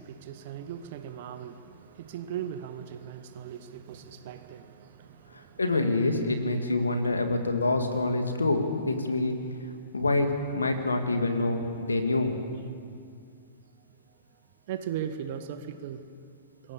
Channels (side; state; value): both; inverted; correlation -0.71